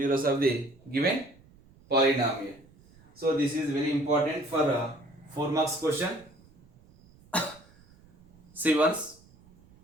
of the given polynomial. So this is very important for 4 marks question. See once,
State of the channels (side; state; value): right; noise; rumble, 27 dB below the sound